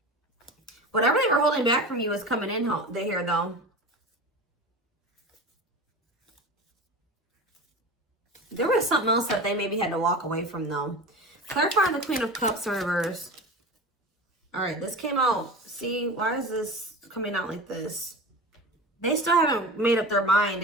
Whatever they were holding back from you is coming in here though. There was something else that they maybe had to walk away from though. Clarifying the Queen of Cups in reverse. All right, this came out. See, why is this coming out like this? They still haven't made up their mind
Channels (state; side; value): normal; both; correlation 0.31